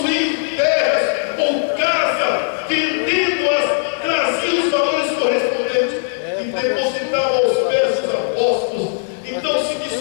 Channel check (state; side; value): silent; right; digital silence